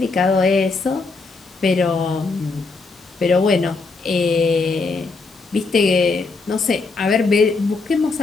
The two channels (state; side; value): quieter; right; 4.0 dB